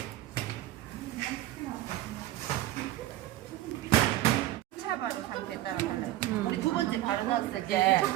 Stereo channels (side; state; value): left; quieter; 15.3 dB